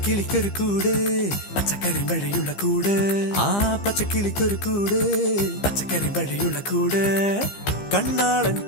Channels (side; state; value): right; late; 15 ms